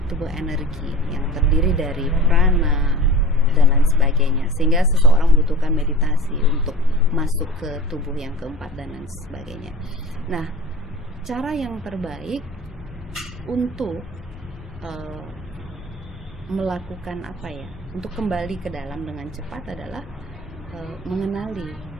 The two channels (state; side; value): normal; both; correlation 0.37